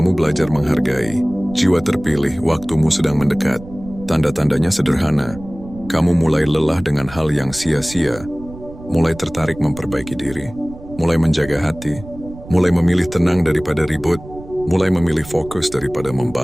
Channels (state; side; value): noise; right; rumble, 16 dB below the sound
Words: belajar menghargai. Jiwa terpilih, waktumu sedang mendekat. Tanda-tandanya sederhana. Kamu mulai lelah dengan hal yang sia-sia. Mulai tertarik memperbaiki diri. Mulai menjaga hati. Mulai memilih tenang daripada ribut. Mulai memilih fokus daripada